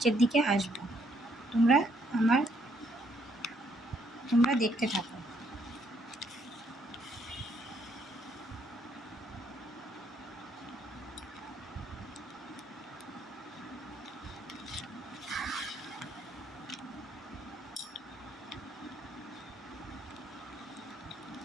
দিকে আসবো। তোমরা দেখতে থাকো।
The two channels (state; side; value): normal; both; correlation 0.70